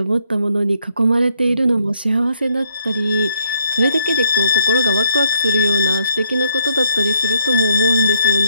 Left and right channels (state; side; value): inverted; both; correlation -0.71